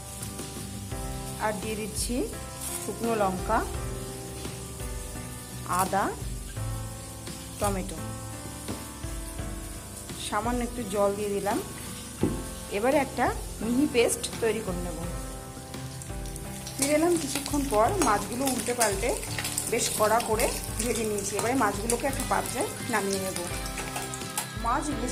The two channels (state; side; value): identical; both; correlation 1.00